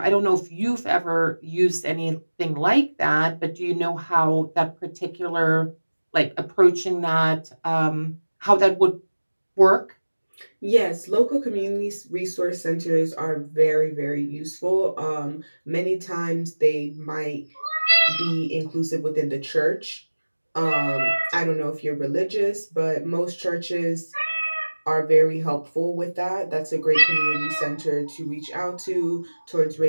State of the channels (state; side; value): inverted; both; correlation -1.00